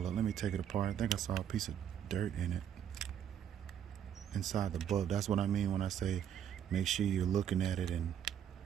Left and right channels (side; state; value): left; quieter; 9.5 dB